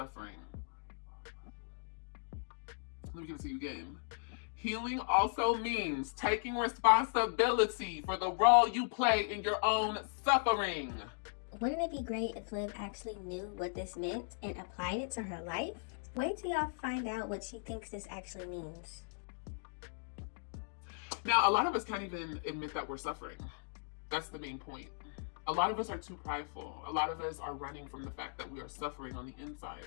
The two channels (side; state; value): right; silent; digital silence